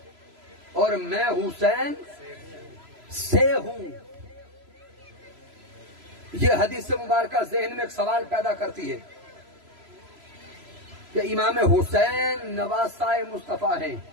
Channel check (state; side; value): late; left; 3.0 ms